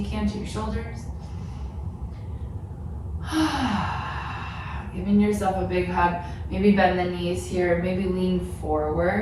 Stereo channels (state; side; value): identical; both; correlation 1.00